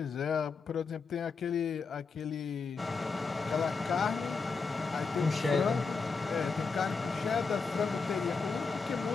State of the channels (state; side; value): quieter; right; 4.7 dB